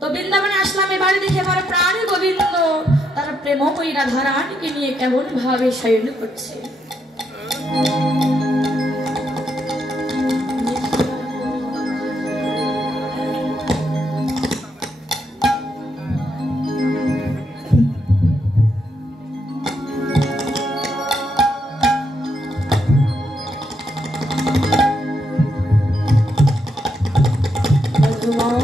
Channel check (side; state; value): both; normal; correlation 0.79